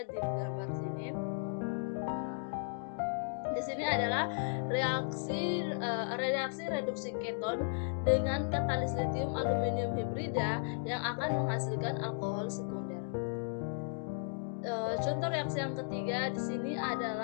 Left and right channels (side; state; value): right; silent; digital silence